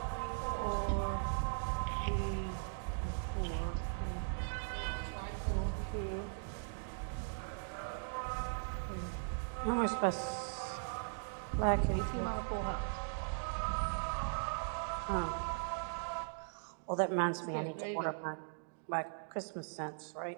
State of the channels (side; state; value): left; silent; digital silence